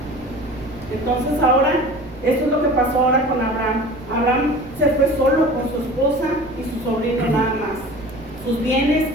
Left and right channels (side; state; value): right; noise; rumble, 23 dB below the sound